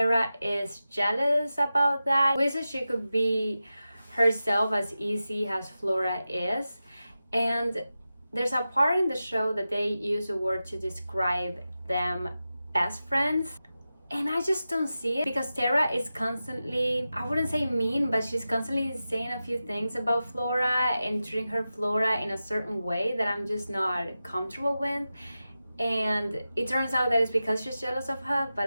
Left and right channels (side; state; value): both; inverted; correlation -0.93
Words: is jealous about that. Wishes she could be herself as easy as Flora is. And there's a part in the show that they use a word to describe them, best friends. And I just don't see it, because Terra is constantly, I wouldn't say mean, but she's constantly saying a few things about Flora and treating her Flora in a certain way that I'm just not comfortable with. And it turns out that it's because she's jealous of her,